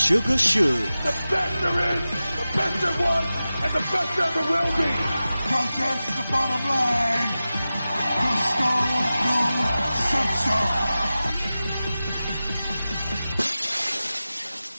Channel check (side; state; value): both; inverted; correlation -0.95